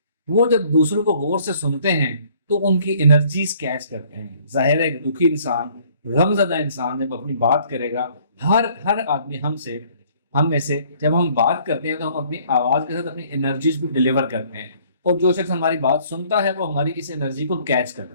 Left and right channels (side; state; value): both; inverted; correlation -0.59